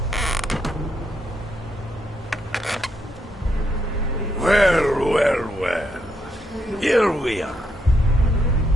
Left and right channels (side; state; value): both; normal; correlation 0.78